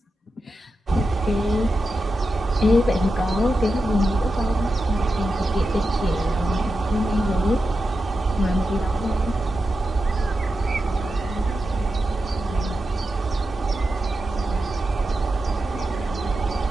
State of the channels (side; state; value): both; normal; correlation 0.90